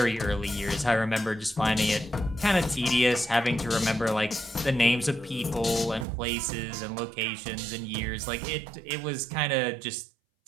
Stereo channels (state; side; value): drops out; left; at 6.1 s